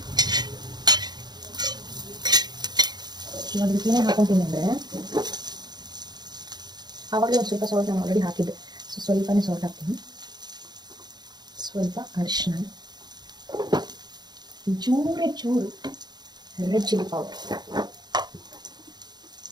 ಇವಾಗ ಇದಕ್ಕೆ ಏನೇ ಹಾಕೊತೀನಿ ಅಂದರೆ, ಆವಾಗಲೇ ಒಂದು ಸ್ವಲ್ಪ ಸಾಲ್ಟ್ ನಾನು ಆಲ್ರೆಡಿ ಹಾಕಿದ್ದೆ, ಸೊ ಸ್ವಲ್ಪನೇ ಸಾಲ್ಟ್ ಹಾಕ್ತೀನಿ. ಸ್ವಲ್ಪ ಅರಿಶಿನ, ಚೂರು ರೆಡ್ ಚಿಲ್ಲಿ ಪೌಡರ್.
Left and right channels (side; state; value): left; late; 0.20 ms